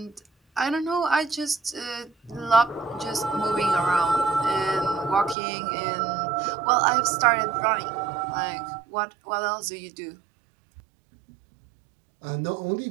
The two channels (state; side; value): drops out; left; at 5.4 s